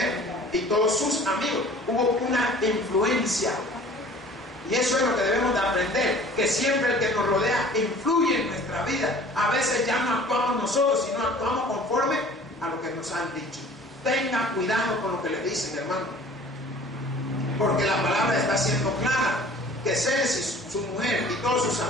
y todos sus amigos, hubo una influencia. Y eso es lo que debemos de aprender, que siempre el que nos rodea influye en nuestra vida. A veces ya no actuamos nosotros, sino actuamos conforme a lo que nos han dicho. Tenga cuidado con lo que le dicen, hermano, porque la palabra está siendo clara, que Zeres y su mujer y todos sus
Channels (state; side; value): normal; both; correlation 0.48